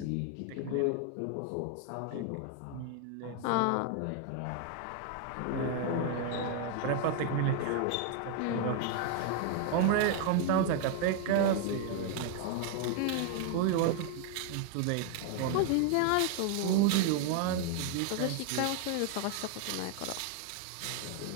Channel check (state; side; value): different; both; correlation 0.00